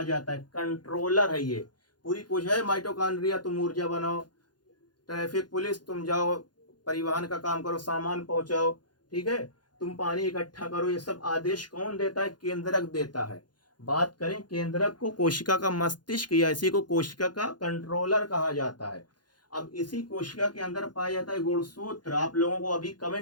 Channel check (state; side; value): late; right; 0.70 ms